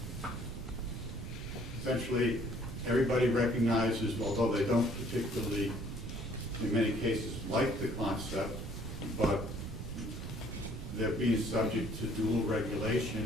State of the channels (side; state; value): right; noise; rumble, 7 dB below the sound